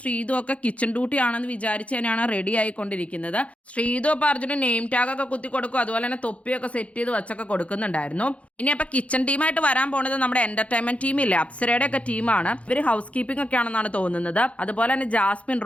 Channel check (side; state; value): right; late; 0.064 ms